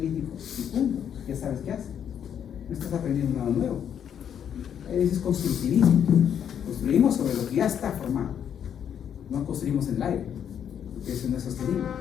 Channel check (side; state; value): right; quieter; 8.8 dB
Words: lítico y punto, ya sabes qué hace. No estás aprendiendo nada nuevo. Eso es constructivismo. Construimos sobre lo que ya está formado. No construimos en el aire, porque eso no es sostenible.